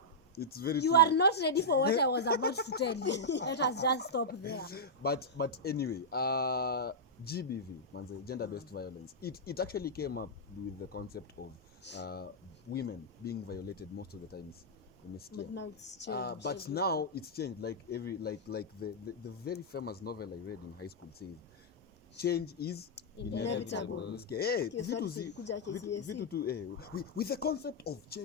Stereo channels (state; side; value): normal; both; correlation -0.09